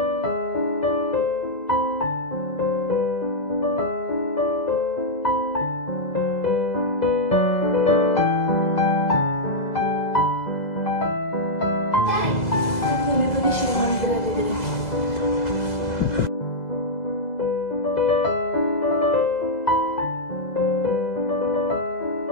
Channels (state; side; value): late; right; 2.0 ms